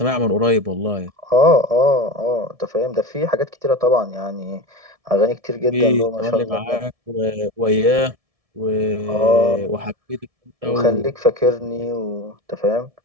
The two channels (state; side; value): late; left; 1.7 ms